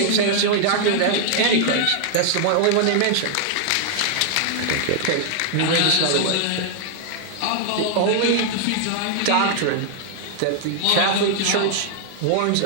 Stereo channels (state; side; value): different; both; correlation -0.01